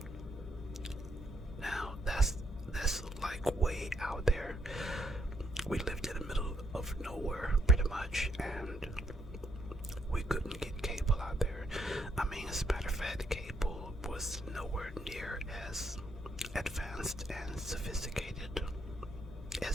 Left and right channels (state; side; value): normal; both; correlation 0.73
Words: Now that's like way out there. We lived in the middle of nowhere pretty much, and we couldn't get cable out there. I mean, as a matter of fact, cable was nowhere near as advanced and sophisticated